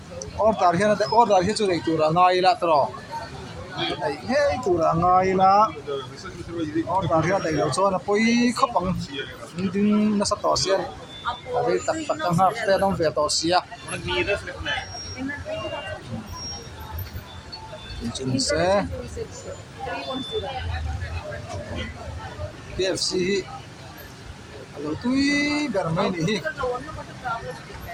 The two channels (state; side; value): identical; both; correlation 1.00